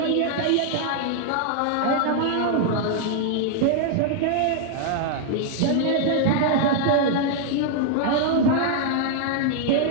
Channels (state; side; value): different; both; correlation 0.00